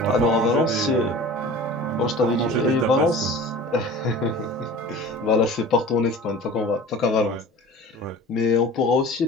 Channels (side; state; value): both; normal; correlation 0.40